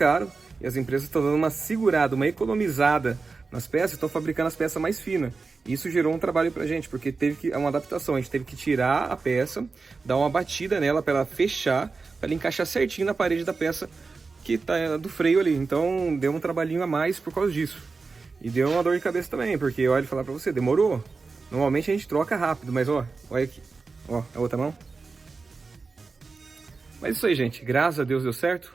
e as empresas estão dando uma segurada, uma economizada nas peças, estão fabricando as peças mais finas. Isso gerou um trabalho pra gente, porque teve uma adaptação. A gente teve que tirar a peça, dar uma batida nela para ela fechar, para ela encaixar certinho na parede da peça que tá do freio ali. Então deu um trabalhinho a mais por causa disso. E deu uma dor de cabeça também, porque olha, falar pra você, demorou. Normalmente a gente troca rápido, mas ó, olha aqui. Ó, a outra mão. Mas isso aí, gente. Graças a Deus deu certo.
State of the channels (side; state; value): left; quieter; 4.3 dB